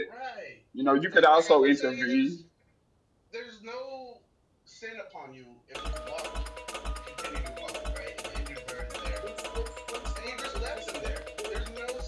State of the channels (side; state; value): both; identical; correlation 1.00